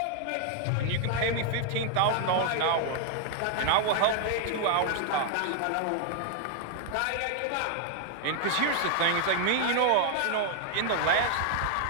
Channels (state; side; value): different; both; correlation 0.00